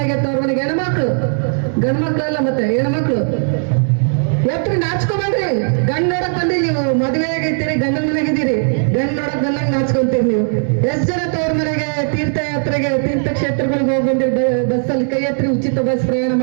ತವ್ರ ಮನೆಗೆ ಹೆಣ್ಮಕ್ಳು, ಗಂಡ್ ಮಕ್ಳಲ್ಲ ಮತ್ತೆ ಹೆಣ್ಮಕ್ಳು ಎತ್ರಿ, ನಾಚ್ಕೊಬೇಡ್ರಿ. ಗಂಡ್ ನೋಡಕ್ ಬಂದಿ ನೀವು, ಮದುವೆ ಆಗಿರ್ತೀರಿ, ಗಂಡನ ಮನೆಗಿದ್ದೀರಿ, ಗಂಡ್ ನೋಡಕ್ ಬಂದಾಗ ನಾಚ್ಕೊಂತೀರಿ ನೀವು. ಎಷ್ಟ್ ಜನ ತವ್ರ ಮನೆಗೆ ತೀರ್ಥಯಾತ್ರೆಗೆ ತೀರ್ಥಕ್ಷೇತ್ರಗಳಿಗೆ ಹೋಗಿ ಬಂದಿರಿ ಬಸ್ಸಲ್ಲಿ? ಕೈ ಎತ್ರಿ. ಉಚಿತ ಬಸ್ ಪ್ರಯಾಣ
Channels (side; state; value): left; silent; 67 dB below the other